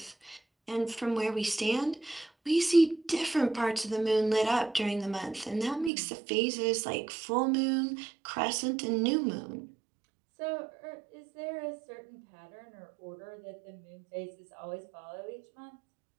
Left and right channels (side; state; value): left; drops out; at 5.9 s